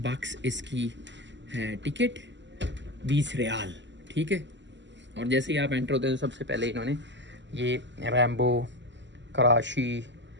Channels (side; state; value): left; late; 0.53 ms